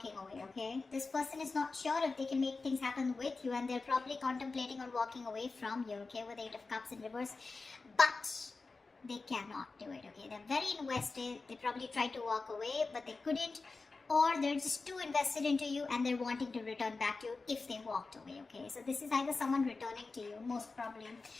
away, okay? This person is not sure if they can make things happen with you, and they're probably contemplating on walking away from you, okay, with Eight of Cups in reverse. But they cannot do it, okay? They're very invested. They probably tried to walk away, but they couldn't. Or they're just too invested into you and they're wanting to return back to you if they walked away, okay? So this is either someone returning to you, most probably.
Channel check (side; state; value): right; quieter; 3.9 dB